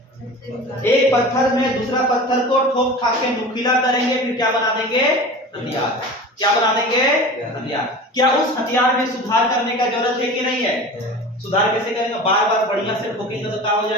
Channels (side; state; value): both; normal; correlation 0.35